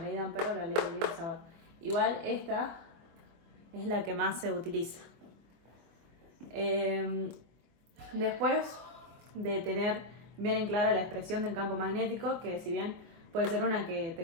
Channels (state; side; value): late; left; 24 ms